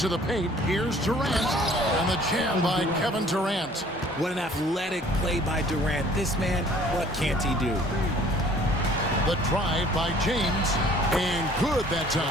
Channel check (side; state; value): both; normal; correlation 0.54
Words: the paint. Here's Durant. And the jam by Kevin Durant. What an athletic play by Durant. This man, what can't he do? The drive by James. And good that